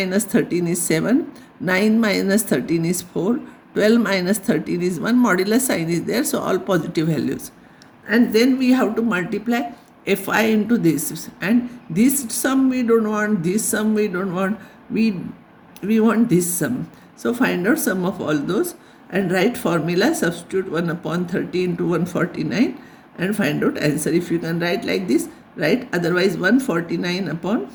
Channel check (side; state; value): both; identical; correlation 1.00